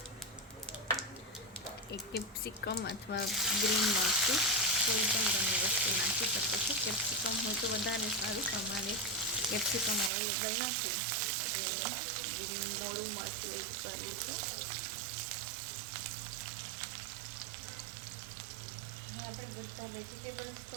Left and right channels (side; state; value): left; drops out; at 10.1 s